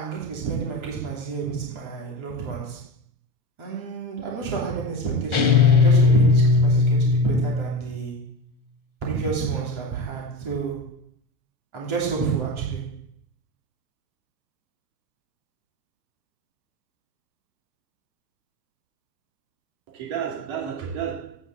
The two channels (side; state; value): left; late; 1.4 ms